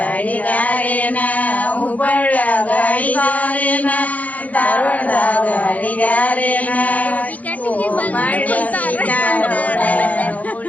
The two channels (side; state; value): right; late; 0.075 ms